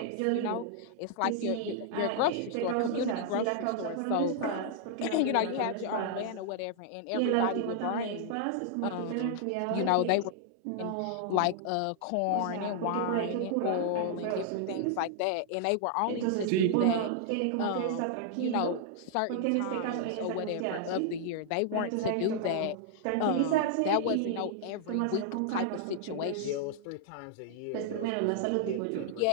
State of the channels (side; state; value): both; different; correlation -0.01